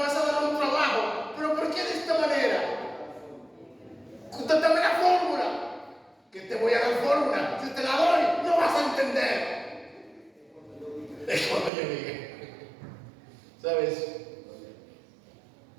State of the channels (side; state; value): left; drops out; at 11.7 s